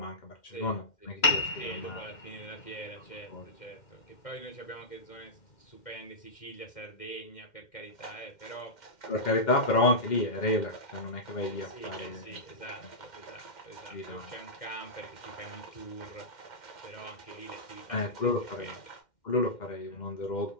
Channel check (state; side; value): late; right; 2.1 ms